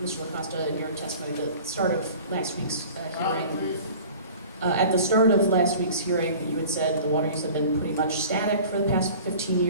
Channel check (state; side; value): inverted; both; correlation -0.43